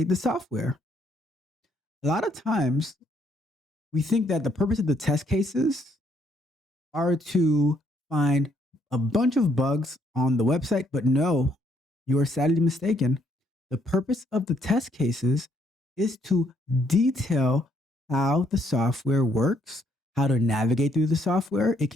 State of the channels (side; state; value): both; normal; correlation 0.70